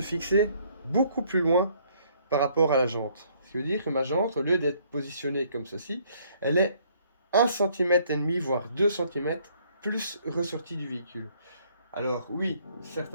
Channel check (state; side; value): inverted; both; correlation -0.64